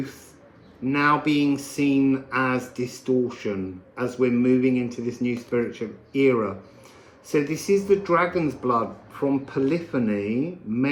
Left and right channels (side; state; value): both; identical; correlation 1.00